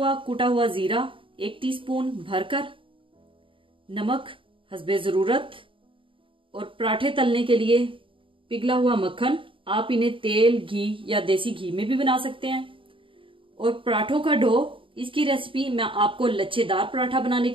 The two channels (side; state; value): left; late; 0.25 ms